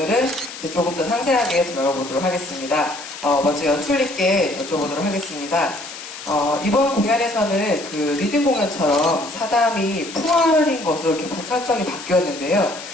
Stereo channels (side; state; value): left; noise; hiss, 12 dB below the sound